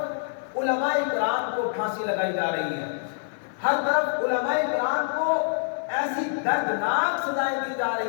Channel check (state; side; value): silent; right; digital silence